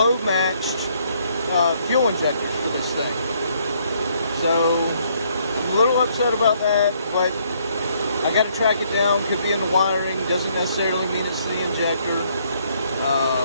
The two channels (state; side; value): inverted; both; correlation -0.68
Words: matched fuel injectors for this thing. So I'm a little upset about that, but I got to track it down. Could be in the wiring, doesn't necessarily mean it's the injector.